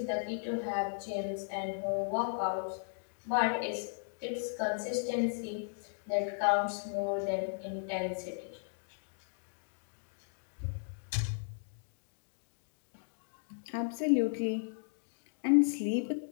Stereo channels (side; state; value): right; silent; digital silence